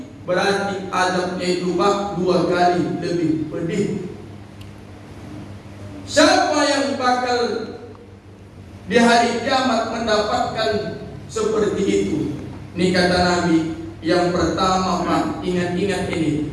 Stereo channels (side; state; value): both; identical; correlation 1.00